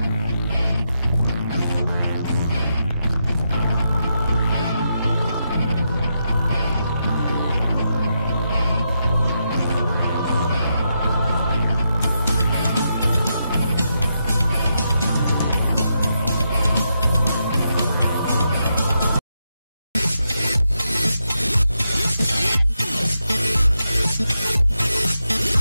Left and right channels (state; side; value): inverted; both; correlation -0.83